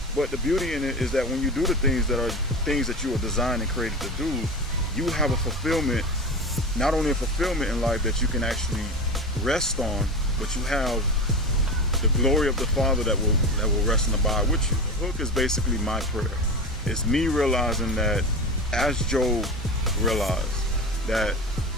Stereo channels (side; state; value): both; normal; correlation 0.26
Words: But the beauty in it is that when you do the things that are things that you are designed and created to do, you have a fulfillment, not only a fulfillment in life that you can actually rest on, but you have the glory of the Father that will rest and abide with you. The hook is basically my prayer. It's me realizing that, as Job realized, that